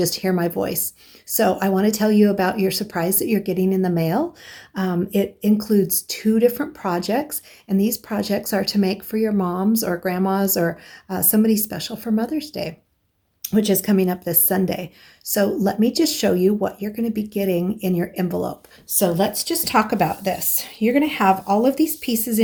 hear my voice. So I want to tell you about your surprise that you're getting in the mail. It includes two different projects, and these projects are to make for your moms or grandmas or somebody special for Mother's Day, which is coming up this Sunday. So let me just show you what you're going to be getting in your envelope. So let's just talk about this. You're going to have all of these pieces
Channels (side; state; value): both; identical; correlation 1.00